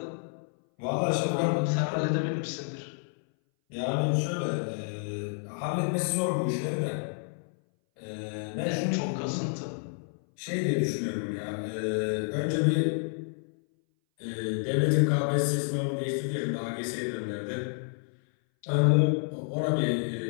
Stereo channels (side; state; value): right; silent; 58 dB below the other